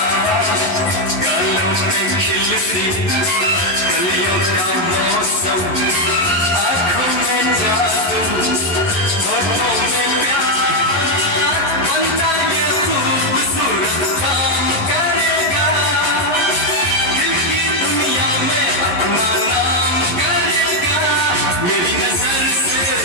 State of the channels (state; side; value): late; right; 11 ms